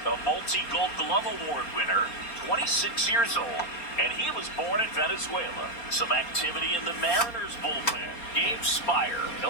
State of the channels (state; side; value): late; right; 4.3 ms